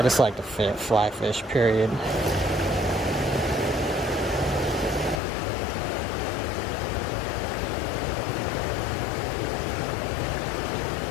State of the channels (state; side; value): drops out; right; at 5.2 s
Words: just like to fly fish, period.